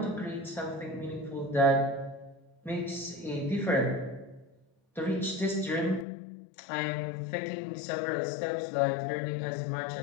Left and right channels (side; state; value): right; drops out; at 6.1 s